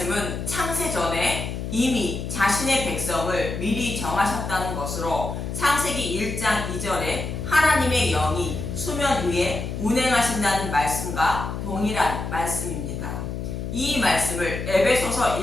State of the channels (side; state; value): left; noise; hum, 5 dB below the sound